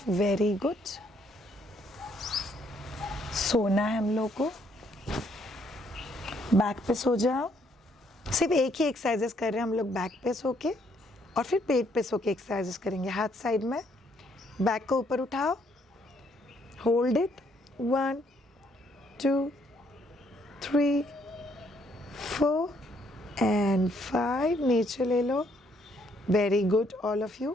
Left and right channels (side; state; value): both; normal; correlation 0.69